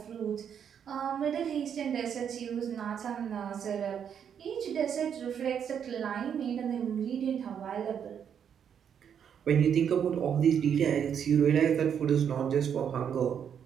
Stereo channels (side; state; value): left; quieter; 8.1 dB